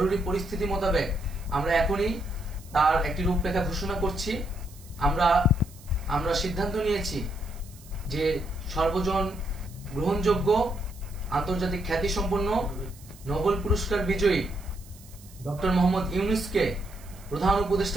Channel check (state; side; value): noise; right; hiss, 23 dB below the sound